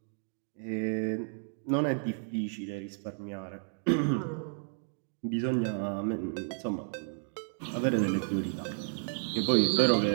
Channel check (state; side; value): silent; left; 56 dB below the other